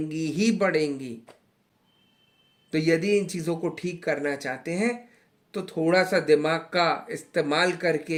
ही बढ़ेंगी। तो यदि इन चीज़ों को ठीक करना चाहते हैं तो थोड़ा सा दिमाग का इस्तेमाल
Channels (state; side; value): identical; both; correlation 1.00